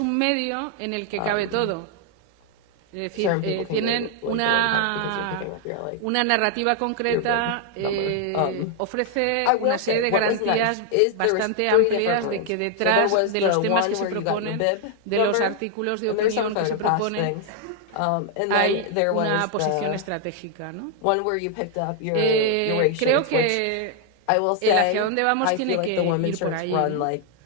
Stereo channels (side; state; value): both; different; correlation 0.00